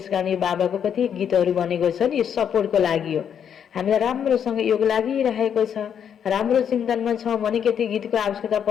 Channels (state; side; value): quieter; right; 8.3 dB